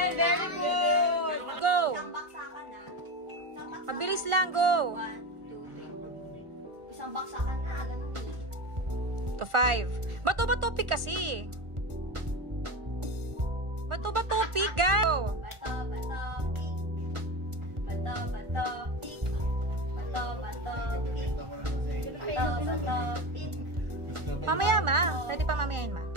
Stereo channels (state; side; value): late; left; 1.4 ms